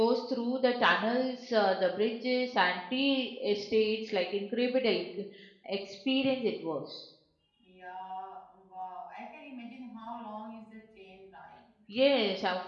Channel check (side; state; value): both; identical; correlation 1.00